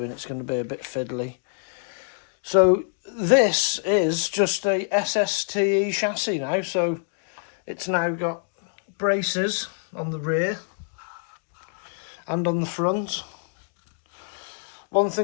It's going to be a bit fiddly. So this is just a Sste chassis now. So it's now got braces on the rear and on the front. One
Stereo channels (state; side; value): silent; right; digital silence